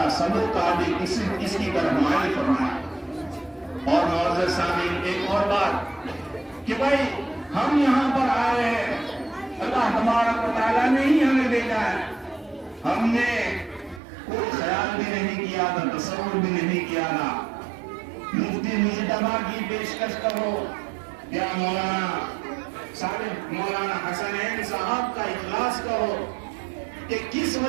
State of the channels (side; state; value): left; drops out; at 14.0 s